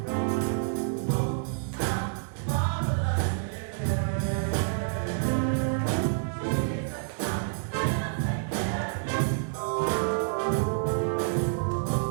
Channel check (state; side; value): silent; left; digital silence